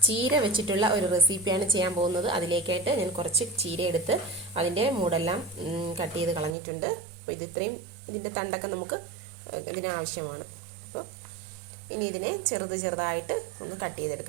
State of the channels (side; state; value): left; drops out; at 6.6 s